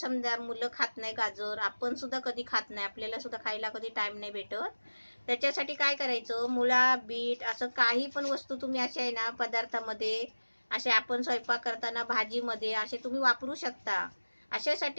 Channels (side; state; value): both; inverted; correlation -1.00